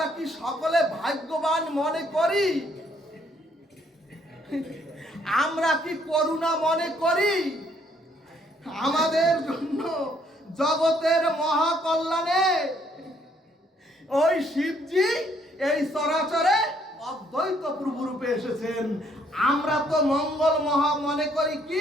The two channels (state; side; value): normal; both; correlation 0.67